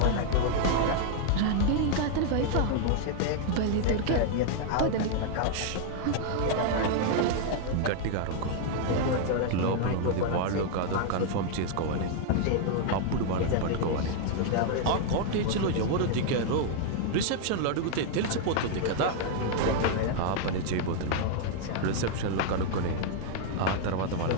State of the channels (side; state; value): both; different; correlation 0.00